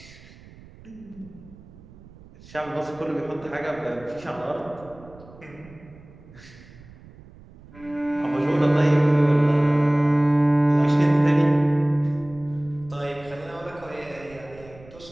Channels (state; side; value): noise; right; rumble, 22 dB below the sound